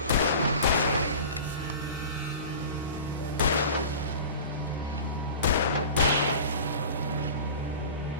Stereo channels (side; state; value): both; inverted; correlation -0.37